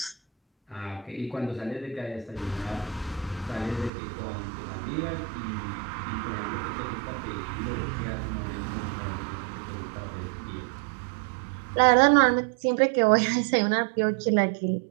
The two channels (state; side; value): drops out; left; at 3.9 s